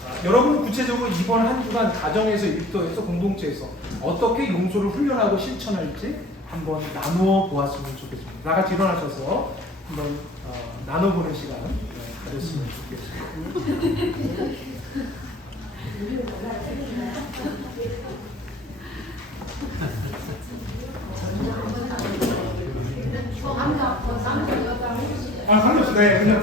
여러분 구체적으로 이번 한 주간 가정에서, 일터에서, 공동체에서 어떻게 용서를 훈련하고 실천할지 한번 나누어 보았으면 좋겠습니다. 다 같이 일어나셔서 한번 나눠보는 시간 가졌으면 좋겠습니다. 상관없어요. 네,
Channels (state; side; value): normal; both; correlation 0.46